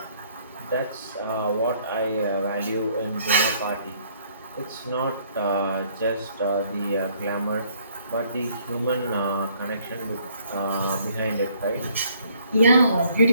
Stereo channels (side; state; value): both; inverted; correlation -0.64